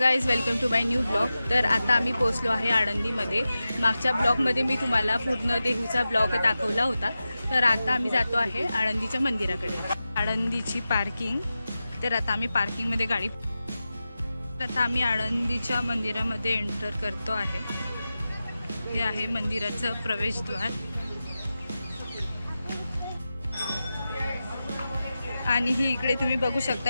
welcome to my new blog. तर आता आम्ही पोहोचलो आहे आळंदीमध्ये। मागच्या ब्लॉगमध्ये मी तुम्हाला पूर्ण देहूचा ब्लॉग दाखवला होता। तर आता आम्ही जातो आहे आळंदीच्या मंदिराकडे। आळंदीची पार्किंग। तर आता आम्ही पार्किंगमध्ये गाडी, आता आम्ही आळंदीच्या मंदिरामध्ये एंटर करतो आहे। हे आहे मंदिराचं प्रवेशद्वार आणि ही इकडे तुम्ही बघू शकता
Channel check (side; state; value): both; inverted; correlation -0.93